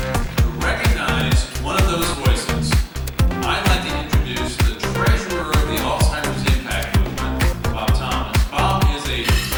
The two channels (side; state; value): both; identical; correlation 1.00